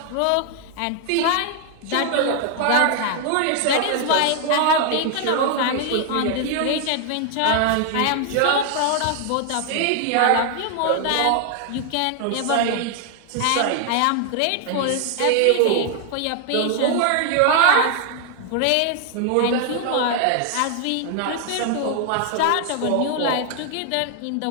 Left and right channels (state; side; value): different; both; correlation 0.00